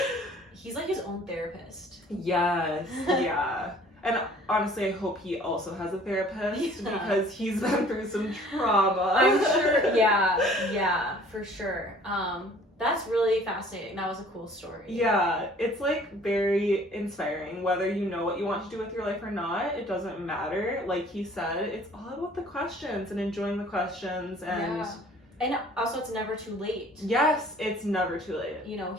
he's like his own therapist. Yes, yeah. And honestly, I hope he also has a therapist because he's been through some trauma. I'm sure, yeah, for sure. That's really fascinating. That was a cool story. Yeah, it's like very inspiring. Whether you know what you want to do with your life or not, it doesn't matter. Like he said, it's all about the questions and enjoying the questions. And yeah. And also, it's never too late. Yes, it's never too late. You know,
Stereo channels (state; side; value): normal; both; correlation 0.53